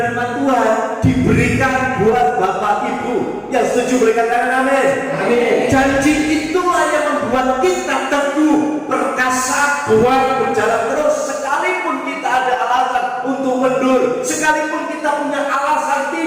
firman Tuhan diberikan buat Bapak Ibu yang setuju, berikan tangan amin. Amin. Janji itulah yang membuat kita teguh, perkasa, kuat, berjalan terus. Sekalipun kita ada alasan untuk mundur, sekalipun kita punya alasan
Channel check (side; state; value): both; identical; correlation 1.00